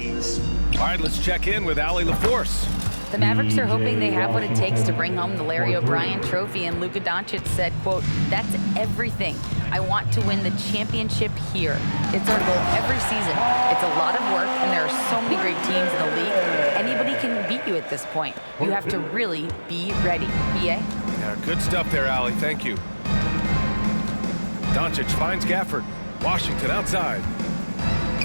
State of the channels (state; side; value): inverted; both; correlation -1.00